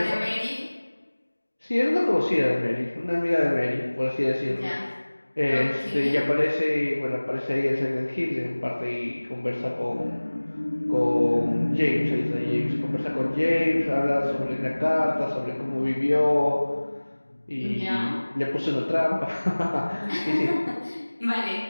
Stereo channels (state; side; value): inverted; both; correlation -1.00